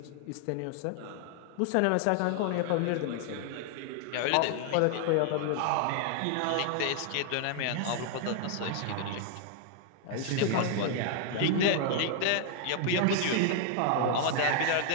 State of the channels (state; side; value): different; both; correlation 0.00